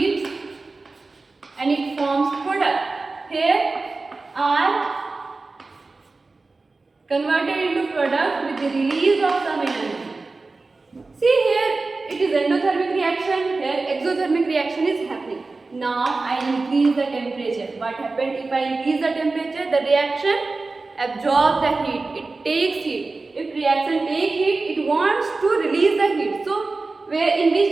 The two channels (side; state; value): left; quieter; 3.6 dB